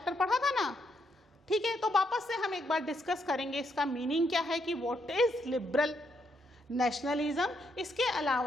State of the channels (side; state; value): both; normal; correlation 0.77